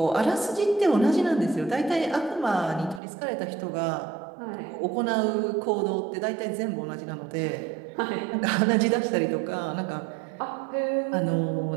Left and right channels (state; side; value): drops out; left; at 3.0 s